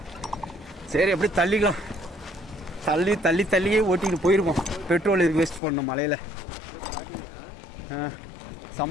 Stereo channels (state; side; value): drops out; right; at 5.6 s